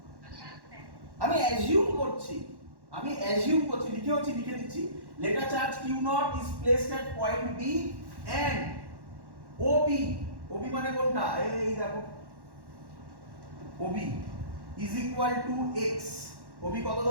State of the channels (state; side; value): late; left; 1.1 ms